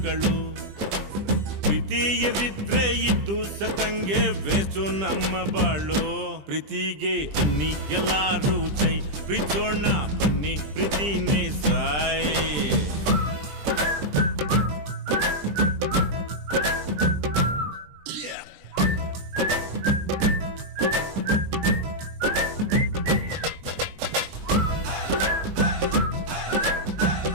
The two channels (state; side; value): late; left; 20 ms